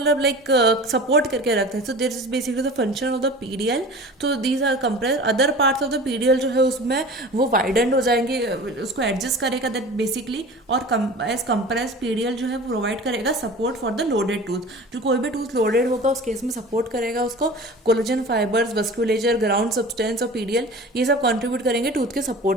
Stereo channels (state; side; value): normal; both; correlation 0.38